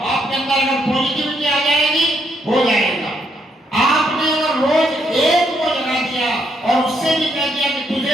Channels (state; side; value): normal; both; correlation 0.74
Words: आपके अंदर अगर पॉजिटिविटी आ जाएगी, हो जाएगा। आपने अगर रोज एक को जगा दिया और उससे भी कह दिया कि तुझे